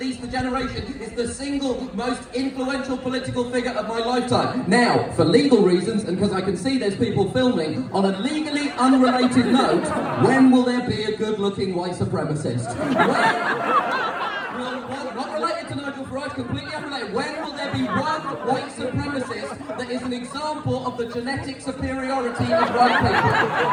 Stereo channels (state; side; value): identical; both; correlation 1.00